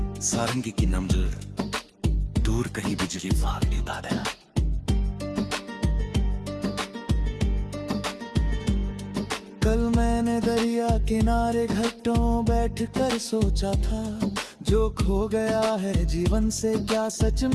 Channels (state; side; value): identical; both; correlation 1.00